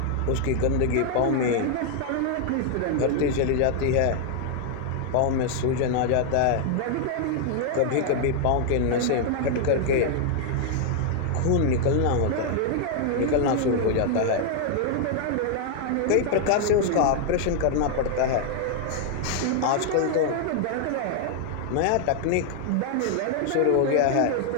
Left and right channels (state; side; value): different; both; correlation 0.00